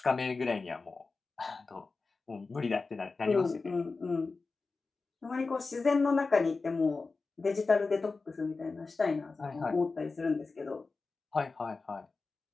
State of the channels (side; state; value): right; quieter; 4.0 dB